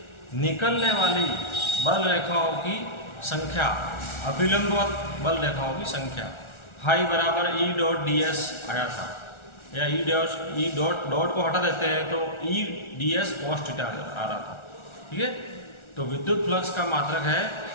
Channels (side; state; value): right; late; 1.4 ms